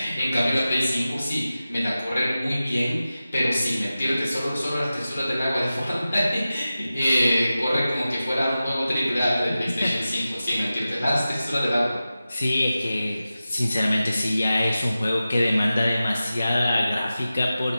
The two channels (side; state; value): both; inverted; correlation -0.94